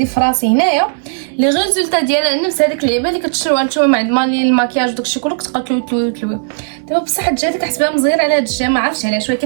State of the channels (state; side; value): silent; left; digital silence